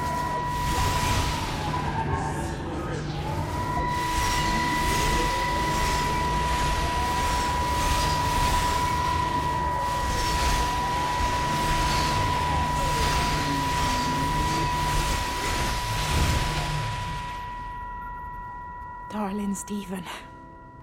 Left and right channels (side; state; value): both; identical; correlation 1.00